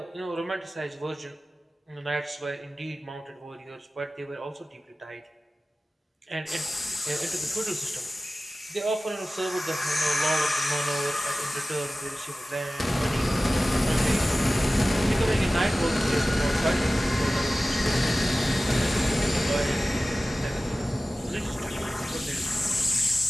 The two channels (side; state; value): both; normal; correlation 0.96